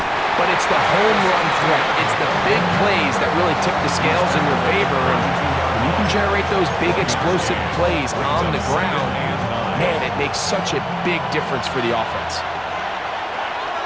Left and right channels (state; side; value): identical; both; correlation 1.00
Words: but it's the home run threat. It's the big plays that really tip the scales in your favor, and when you can generate those big explosive plays on the ground, man, it makes such a big difference for the offense.